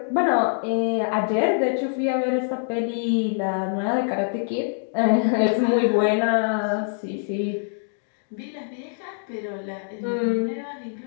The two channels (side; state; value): right; silent; digital silence